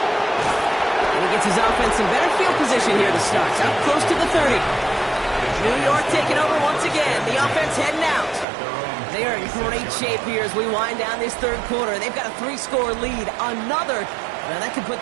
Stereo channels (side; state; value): left; drops out; at 8.5 s